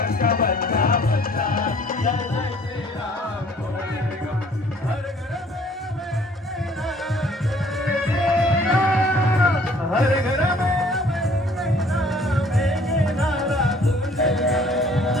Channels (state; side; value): normal; both; correlation 0.57